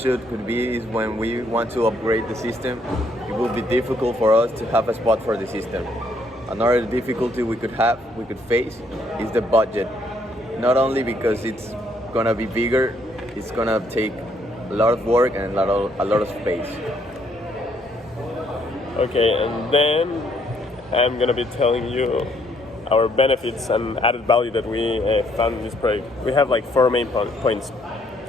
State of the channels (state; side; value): normal; both; correlation 0.69